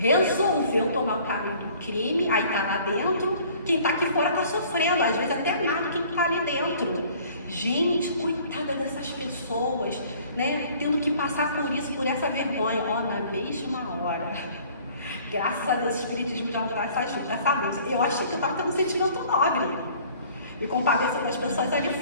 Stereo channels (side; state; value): both; inverted; correlation -0.53